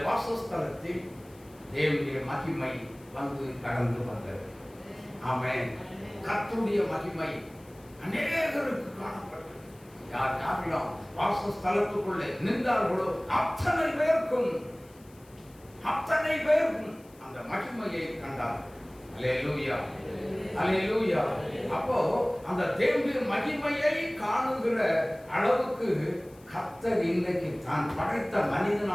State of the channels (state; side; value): noise; left; hiss, 27 dB below the sound